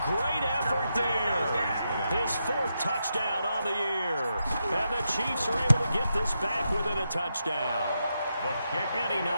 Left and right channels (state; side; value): inverted; both; correlation -0.85